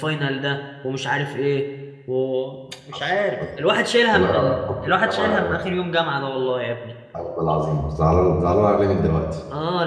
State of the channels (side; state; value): both; identical; correlation 1.00